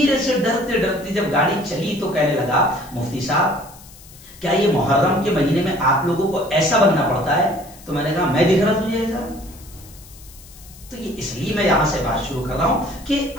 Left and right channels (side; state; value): left; noise; hiss, 21 dB below the sound